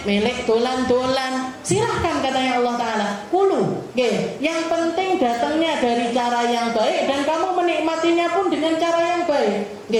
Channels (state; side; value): identical; both; correlation 1.00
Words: melek dolan-dolan, silahkan, katanya Allah Ta'ala. Kulu, yang penting datangnya dari cara yang baik dan kamu menikmatinya pun dengan cara yang baik.